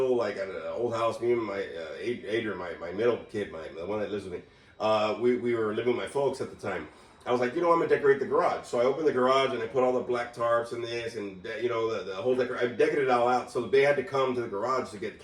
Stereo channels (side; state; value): both; identical; correlation 1.00